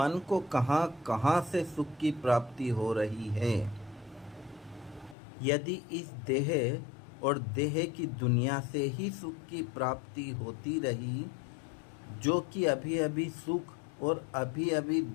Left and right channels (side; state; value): right; drops out; at 5.2 s